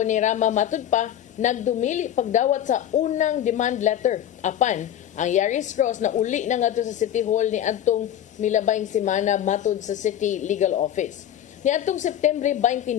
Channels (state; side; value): quieter; right; 10.7 dB